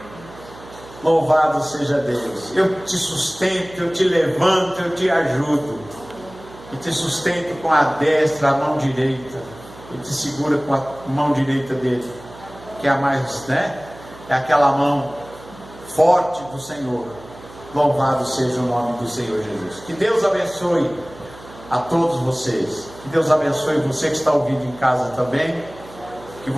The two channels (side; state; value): right; noise; hum, 19 dB below the sound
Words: Louvado seja Deus. Eu te sustento, eu te levanto, eu te ajudo, e te sustento com a destra, a mão direita, e te segura com a mão direita dele, que é a mais, né? É aquela mão forte do Senhor. Louvado seja o nome do Senhor Jesus. Que Deus abençoe a todos vocês. Que Deus abençoe você que está ouvindo em casa também. Que